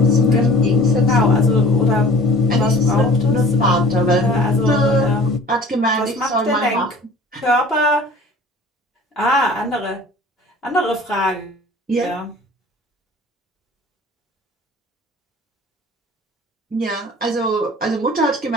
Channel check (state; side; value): normal; both; correlation 0.46